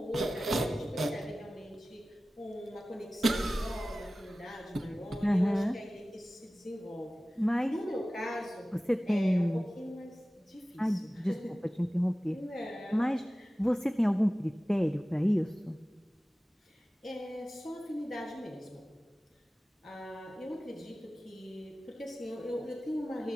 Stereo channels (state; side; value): normal; both; correlation 0.96